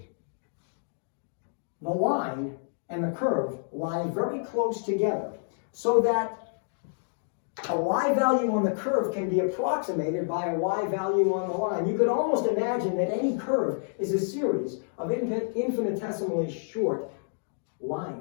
the line and the curve lie very close together, so that a y value on the curve can be approximated by a y value on the line. You could almost imagine that any curve is a series of infinitesimally short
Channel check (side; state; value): right; silent; digital silence